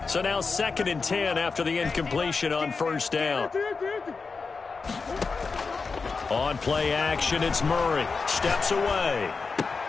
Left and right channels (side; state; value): right; quieter; 4.6 dB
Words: So now 2nd and 10 after the incompletion on first down. On play action, it's Murray. Steps away.